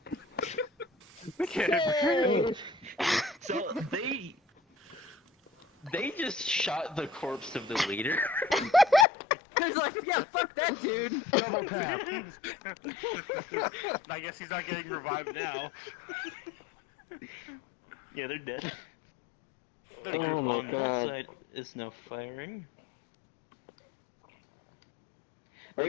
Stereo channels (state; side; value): drops out; right; at 9.1 s